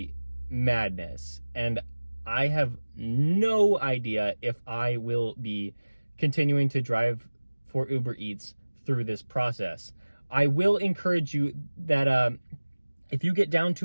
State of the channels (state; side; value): inverted; both; correlation -1.00